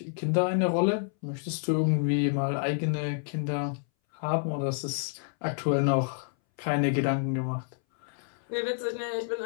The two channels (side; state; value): right; silent; 59 dB below the other